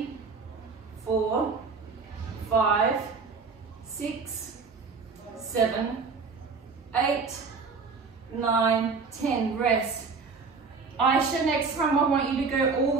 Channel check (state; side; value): quieter; left; 4.7 dB